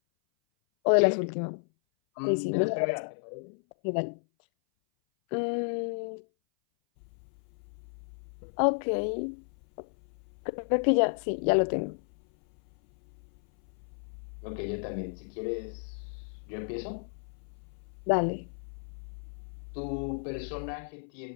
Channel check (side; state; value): right; silent; 56 dB below the other